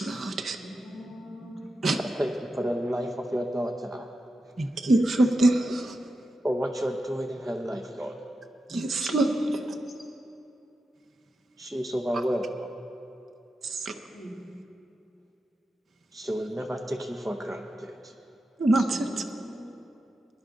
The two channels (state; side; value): normal; both; correlation 0.89